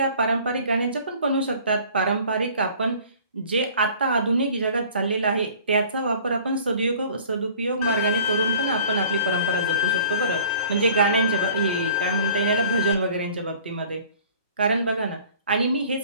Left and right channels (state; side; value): inverted; both; correlation -0.50